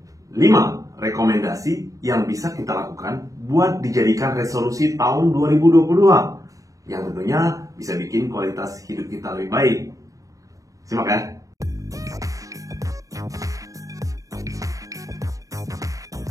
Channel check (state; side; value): late; left; 0.16 ms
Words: 5 rekomendasi yang bisa kita lakukan buat dijadikan resolusi tahun 2022 yang tentunya bisa bikin kualitas hidup kita lebih baik. Simak ya.